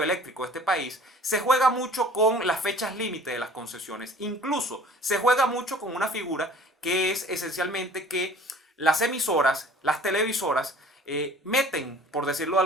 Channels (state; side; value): normal; both; correlation 0.49